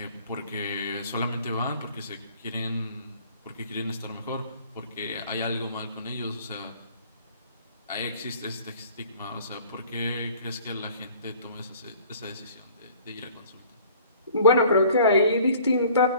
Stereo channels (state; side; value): inverted; both; correlation -0.51